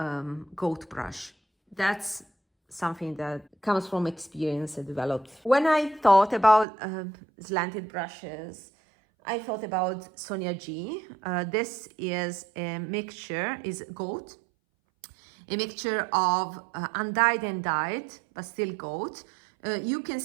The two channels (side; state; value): left; drops out; at 6.7 s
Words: goat brush. That's something that comes from experience I developed. When I thought about slanted brushes, I thought about Sonia G. This is a mixture, is goat, a mixture of undyed and dyed, but still goat, You can